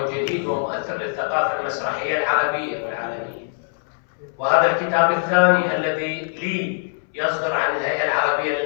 جديد ومؤثر للثقافة المسرحية العربية والعالمية. وهذا الكتاب الثاني الذي لي يصدر عن الهيئة العربية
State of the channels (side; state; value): right; silent; 64 dB below the other